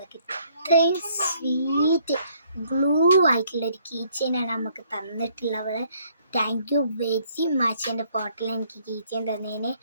ഇത്രയും സ്വീറ്റ് ഗ്ലൂ ആയിട്ടുള്ളൊരു കീ ചെയിനാണ് നമുക്ക് തന്നിട്ടുള്ളവൾ. Thank you very much. എൻ്റെ ഫോട്ടോയിൽ എനിക്ക് കീ ചെയിൻ തന്നതിന്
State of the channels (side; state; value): both; inverted; correlation -0.65